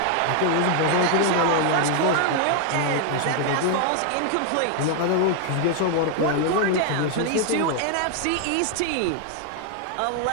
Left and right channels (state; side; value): different; both; correlation 0.00